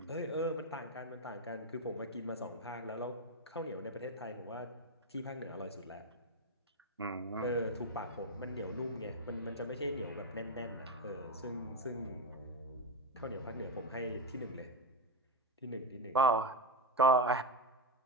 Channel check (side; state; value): both; normal; correlation 0.08